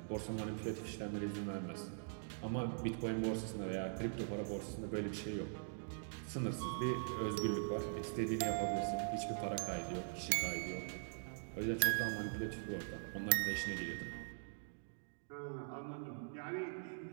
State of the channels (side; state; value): left; silent; digital silence